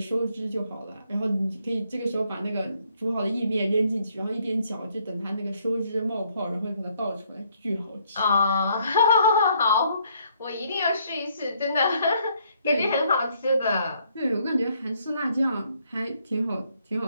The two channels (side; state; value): both; inverted; correlation -0.68